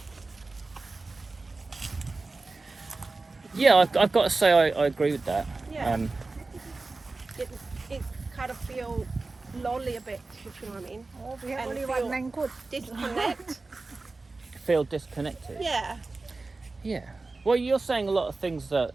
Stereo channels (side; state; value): left; quieter; 3.6 dB